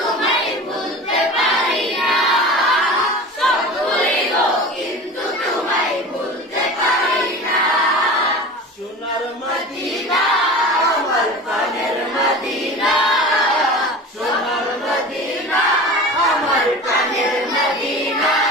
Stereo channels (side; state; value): both; normal; correlation 0.34